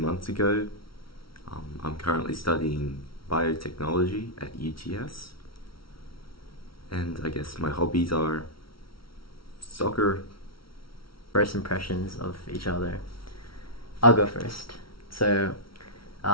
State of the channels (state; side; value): late; right; 0.74 ms